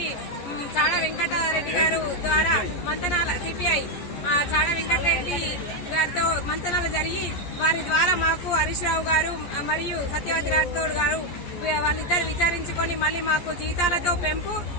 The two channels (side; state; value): right; late; 14 ms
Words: చాడా వెంకటరెడ్డి గారు ద్వారా మంతనాల సిపిఐ చాడా వెంకటరెడ్డి గారితో మంతనాలు జరిగి వారి ద్వారా మాకు హరీష్ రావు గారు మరియు సత్యవతి రాథోడ్ గారు వాళ్ళిద్దరు విచారించుకొని మళ్ళీ మాకు